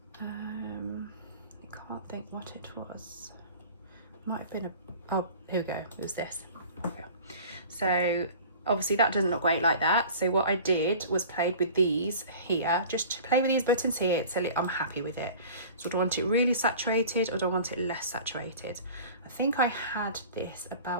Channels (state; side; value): inverted; both; correlation -0.42